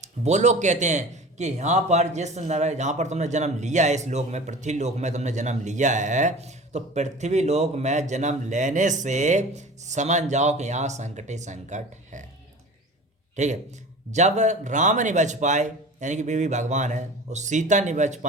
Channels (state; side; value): normal; both; correlation 0.38